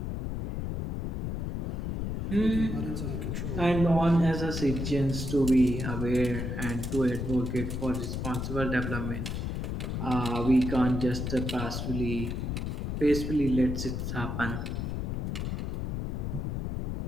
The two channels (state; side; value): noise; left; rumble, 2 dB below the sound